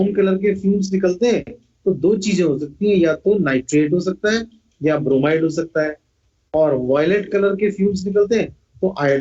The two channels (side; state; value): both; identical; correlation 1.00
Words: कलर के फ्यूम्स निकलते हैं, तो 2 चीजें हो सकती हैं, या तो नाइट्रेट हो सकता है या ब्रोमाइड हो सकता है, और वायलेट कलर के फ्यूम्स निकलते हैं तो